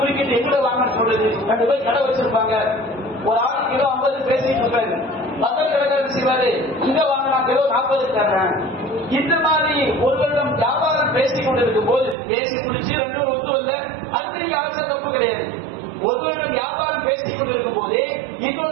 எங்கட வாங்கன்னு சொல்லுது. 2 பேர் கடை வச்சிருப்பாங்க, ஒரு ஆள் கிலோ 50 பேசிட்டு இருப்பாரு, பக்கத்து கடைக்காரர் செய்வாரு இங்க வாங்கினா கிலோ 40 தர்றேன். இந்த மாதிரி ஒருவரிடம் வியாபாரம் பேசிக் கொண்டிருக்கும் போது பேசி குடிச்சு 2 ஒத்து இல்ல, அது அவசர தப்பு கிடையாது. ஒருவரிடம் வியாபாரம் பேசிக் கொண்டிருக்கும் போதே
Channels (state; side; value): drops out; left; at 12.2 s